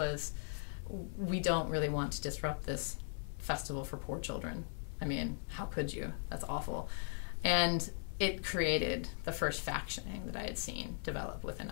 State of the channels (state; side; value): silent; right; 52 dB below the other